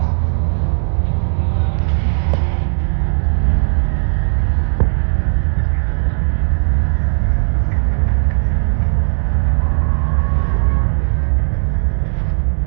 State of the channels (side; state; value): left; silent; 69 dB below the other